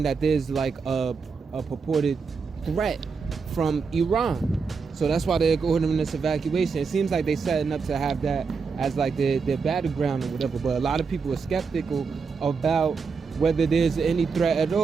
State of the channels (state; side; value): quieter; left; 5.2 dB